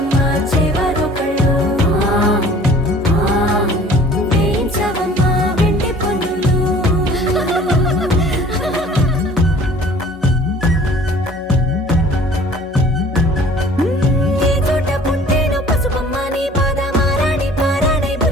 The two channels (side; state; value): both; normal; correlation 0.50